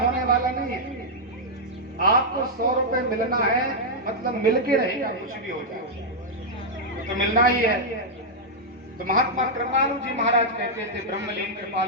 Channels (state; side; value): normal; both; correlation -0.05